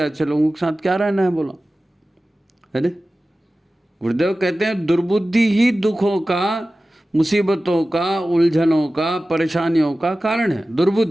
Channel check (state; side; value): normal; both; correlation 0.96